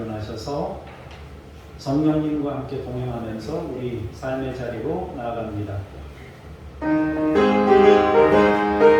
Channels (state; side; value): identical; both; correlation 1.00